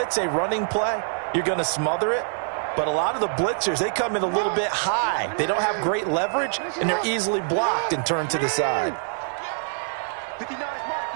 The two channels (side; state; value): left; silent; 62 dB below the other